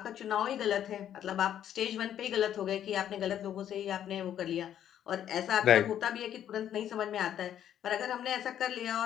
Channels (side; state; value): right; quieter; 10.4 dB